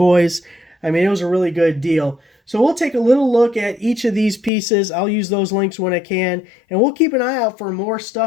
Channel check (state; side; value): drops out; right; at 4.5 s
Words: I mean, it was a really good deal. So we'll take a little look at each of these pieces. I'll use those links when I can, and we'll keep an eye out for more